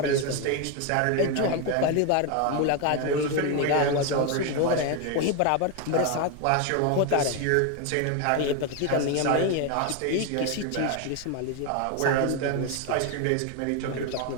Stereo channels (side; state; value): both; different; correlation 0.02